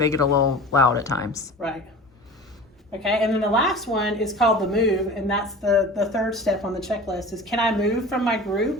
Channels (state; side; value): normal; both; correlation 0.37